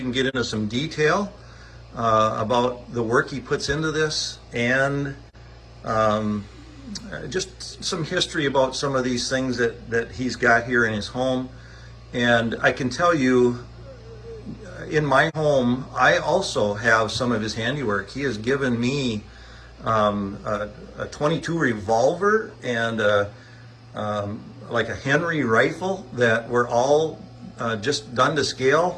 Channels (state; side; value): identical; both; correlation 1.00